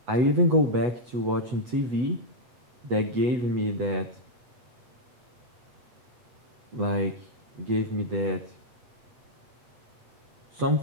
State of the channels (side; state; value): left; late; 8.1 ms